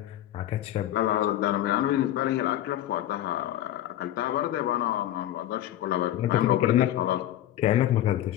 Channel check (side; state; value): right; quieter; 12.8 dB